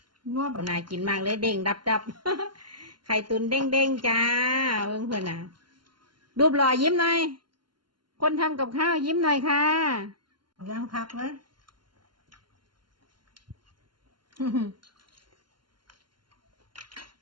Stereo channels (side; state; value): left; late; 0.72 ms